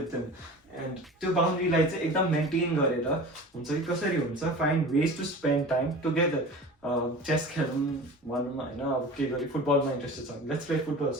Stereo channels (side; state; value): both; normal; correlation 0.36